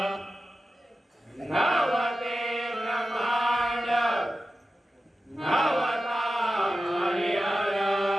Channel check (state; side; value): normal; both; correlation 0.93